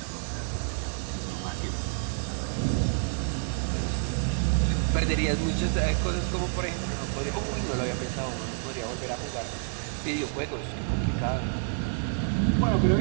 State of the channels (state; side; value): silent; left; 59 dB below the other